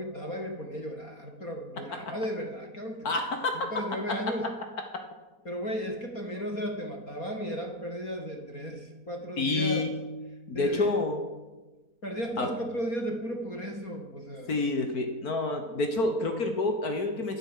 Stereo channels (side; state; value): right; late; 4.5 ms